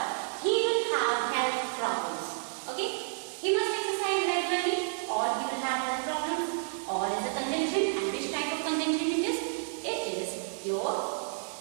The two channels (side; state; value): left; silent; digital silence